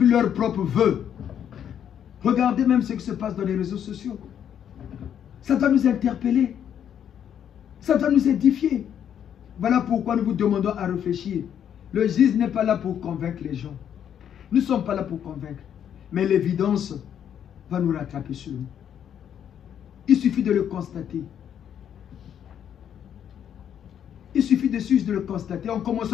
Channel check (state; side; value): quieter; right; 9.2 dB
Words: leurs propres vœux. Regardez même ce qui se passe dans les réseaux sociaux. Ça doit nous interpeller. Ça doit nous édifier. Voilà pourquoi nous vous demandons à réfléchir. Le juge n'est pas là pour convaincre les gens. Nous ne sommes pas là pour convaincre. Mais l'évidence va nous rattraper sur nous. Il suffit de le constater. Il suffit de le constater. En